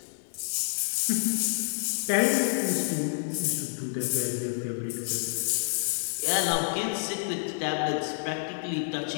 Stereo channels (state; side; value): silent; right; digital silence